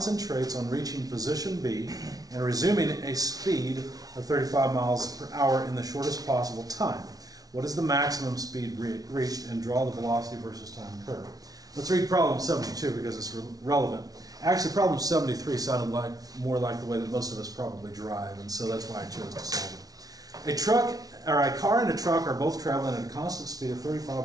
on reaching position B and resuming a speed of 35 miles per hour in the shortest possible time. What is the maximum speed reached, and draw the velocity versus time curve? Let's read problem 72 because it's relevant. Actually, problem 73 sounded more like the way that most of us probably drive, and so that's why I chose to solve it. A car and a truck are both traveling at a constant speed of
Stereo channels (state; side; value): late; left; 0.18 ms